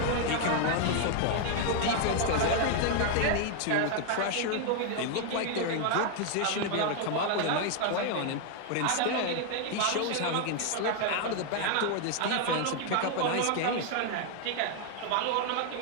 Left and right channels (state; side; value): different; both; correlation 0.00